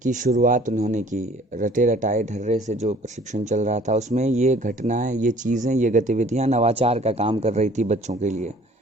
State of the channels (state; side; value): normal; both; correlation 0.53